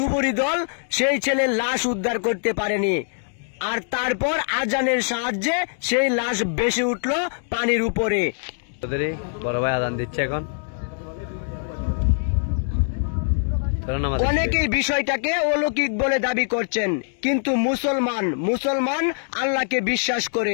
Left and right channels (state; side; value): silent; right; digital silence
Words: দল সেই ছেলের লাশ উদ্ধার করতে পারেনি। আর তারপর আজানের সাহায্যে সেই লাশ ভেসে উঠল পানির উপরে। বড় ভাই আজান দিচ্ছে এখন। অনেকেই বিষয়টাকে অলৌকিক বলে দাবি করছেন, কিন্তু মুসলমান আল্লাহকে বিশ্বাস